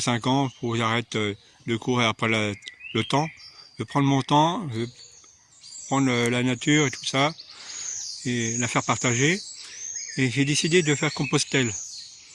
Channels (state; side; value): identical; both; correlation 1.00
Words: ans, faut que j'arrête de courir après le temps. Je vais prendre mon temps, je vais prendre la nature et tout ça, et la faire partager. Et j'ai décidé de faire Compostelle.